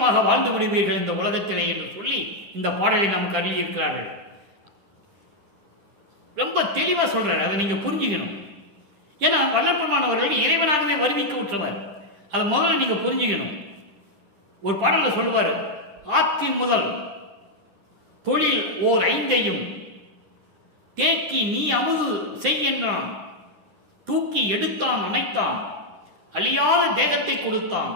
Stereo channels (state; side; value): late; left; 10 ms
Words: வாழ்ந்து விடுவீர்கள் இந்த உலகத்திலே என்று சொல்லி இந்த பாடலை நமக்கு அருளியிருக்கிறார்கள். ரொம்ப தெளிவாக சொல்றாரு. அதை நீங்க புரிஞ்சுக்கணும். ஏன்னா வல்லற்பெருமானவர்கள் இறைவனாகவே வருவிக்க உற்றவர். அதை முதல்ல நீங்க புரிஞ்சுக்கணும். ஒரு பாடல்ல சொல்லுவார், ஆக்கி முதல் தொழில் ஓர் 5ஐயும் தேக்கி நீ அமுது செய்கின்றான், தூக்கி எடுத்தான் அணைத்தான், அழியாத தேகத்தை கொடுத்தான்,